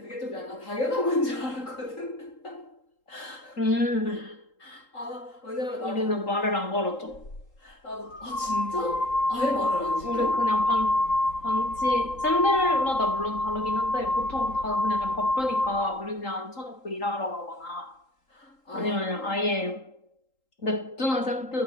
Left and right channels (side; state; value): right; late; 3.8 ms